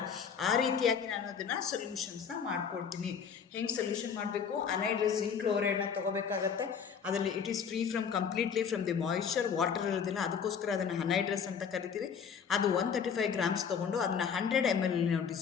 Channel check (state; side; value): quieter; right; 6.9 dB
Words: ಆ ರೀತಿಯಾಗಿ ನಾನು ಅದನ್ನು ಸೊಲ್ಯೂಷನ್ಸ್ನ ಮಾಡ್ಕೊಳ್ತೀನಿ. ಹೆಂಗೆ ಸೊಲ್ಯೂಷನ್ ಮಾಡಬೇಕು, ಅನೈಡ್ರಸ್ ಜಿಂಕ್ ಕ್ಲೋರೈಡ್ನ ತೊಗೋಬೇಕಾಗತ್ತೆ. ಅದರಲ್ಲಿ it is completely from the moisture, water ಇರೋದಿಲ್ಲ, ಅದಕ್ಕೋಸ್ಕರ ಅದನ್ನು ಅನೈಡ್ರಸ್ ಅಂತ ಕರಿತೀವಿ. ಅದು 135 grams ತೊಗೊಂಡು ಅದನ್ನು 100 ml ನಾವು